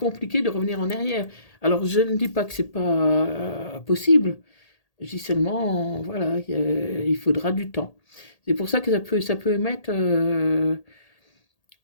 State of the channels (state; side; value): late; right; 1.8 ms